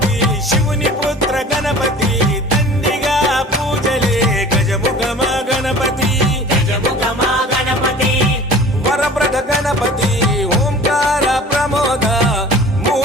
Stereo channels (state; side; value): normal; both; correlation 0.44